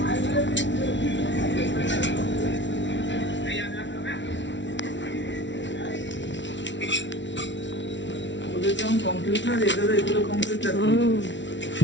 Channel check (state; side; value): late; right; 0.53 ms